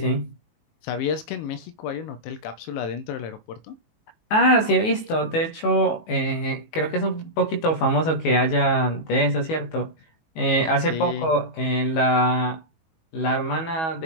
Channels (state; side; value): late; right; 19 ms